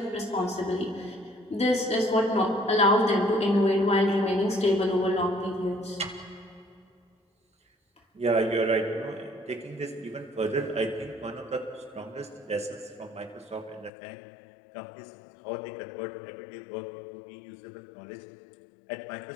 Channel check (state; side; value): drops out; right; at 13.9 s